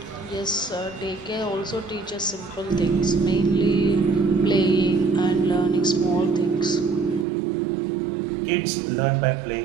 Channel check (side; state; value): left; drops out; at 7.2 s